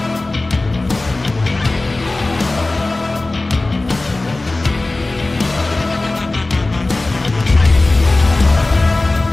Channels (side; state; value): right; quieter; 3.0 dB